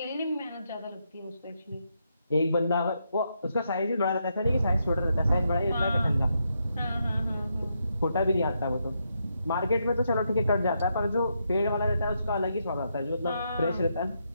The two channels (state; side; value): inverted; both; correlation -0.80